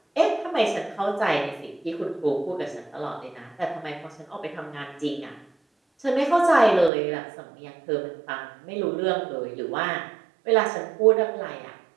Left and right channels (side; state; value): left; drops out; at 6.9 s